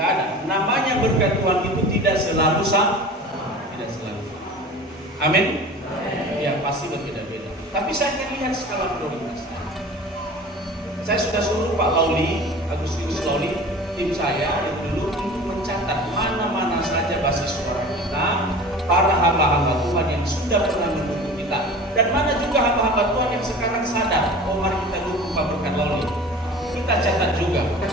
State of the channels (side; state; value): both; normal; correlation 0.39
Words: ada. Namanya berkat Tuhan itu tidak selalu sama. Tidak selalu sama. Amin? Ya pasti berbeda-beda. Tapi saya akan lihat skala prioritas. Saya sudah suruh Pak Lauli, Agustinus Lauli, tim saya dulu untuk mencatat mana-mana saja basis suara kita, para hamba-hamba Tuhan yang sudah pernah mendukung kita, dan mana juga hamba-hamba Tuhan yang sekarang sadar, oh mari kita dukung Pak Berkat Loli. Kita catat juga.